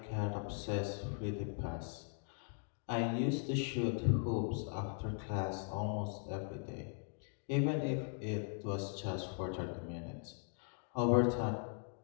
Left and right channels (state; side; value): silent; right; 51 dB below the other